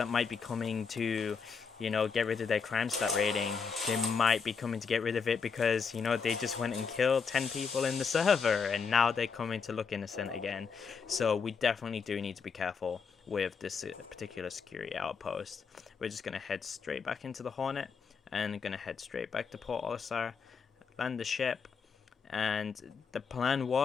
might be coming to, you know, get rid of their crime stat rating. They might be coming to get rid of it because, you know, they just went and killed 10 people in the server, and now they're coming to look innocent again. So we definitely do need to be careful with this particular security outpost. We're just going to head straight back into the Hornet, and going to head straight back to Port Olisar, land the ship, and the plan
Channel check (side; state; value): right; quieter; 5.7 dB